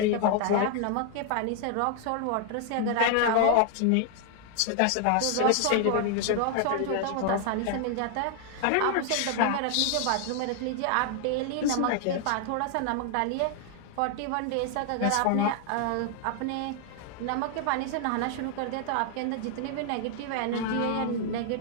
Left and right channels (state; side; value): different; both; correlation 0.00